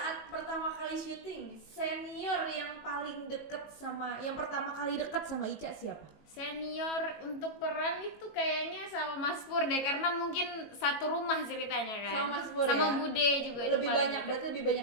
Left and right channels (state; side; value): late; right; 19 ms